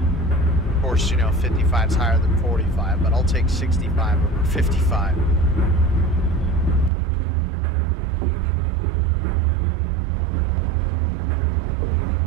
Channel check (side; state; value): left; drops out; at 6.9 s